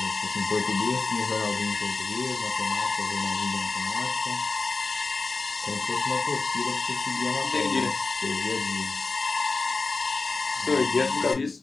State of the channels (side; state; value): right; quieter; 3.9 dB